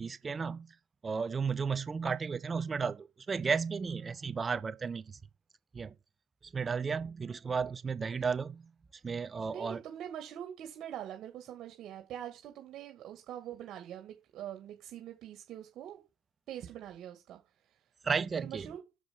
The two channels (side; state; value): left; quieter; 5.4 dB